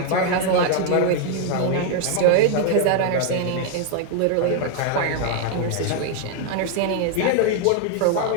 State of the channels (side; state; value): both; different; correlation 0.01